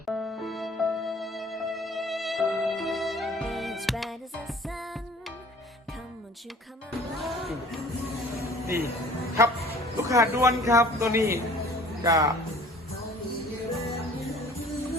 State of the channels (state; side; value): normal; both; correlation 0.49